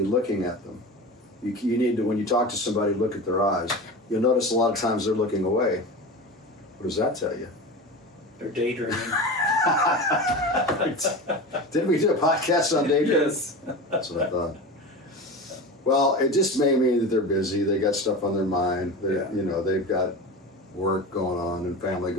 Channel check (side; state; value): both; normal; correlation 0.29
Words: looking at them? You need to, when you talk to somebody, look at their eyes. You'll notice a lot of times they're looking away. What does that tell you? They're daydreaming. Didn't we do a podcast on daydreaming? Yes. That's what I thought. Well, it just may mean that they're busy. They got stuff on their mind. Yeah. You know, they've got work going on and family